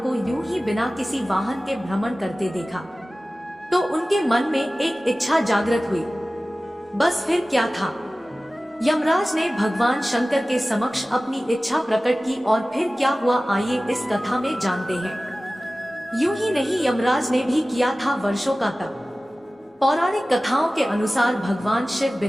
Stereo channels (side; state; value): both; normal; correlation 0.97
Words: को यूं ही बिना किसी वाहन के भ्रमण करते देखा तो उनके मन में एक इच्छा जागृत हुई। बस फिर क्या था, यमराज ने भगवान शंकर के समक्ष अपनी इच्छा प्रकट की और फिर क्या हुआ आइए इस कथा में जानते हैं। यूं ही नहीं, यमराज ने भी किया था वर्षों का तप। पौराणिक कथाओं के अनुसार भगवान शिव